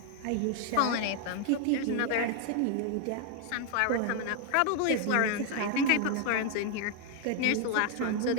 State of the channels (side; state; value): both; different; correlation 0.00